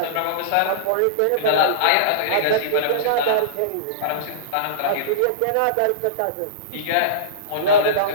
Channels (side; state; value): both; different; correlation -0.04